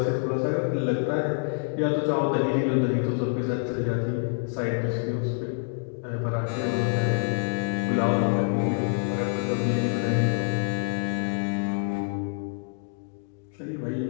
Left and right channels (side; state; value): right; silent; digital silence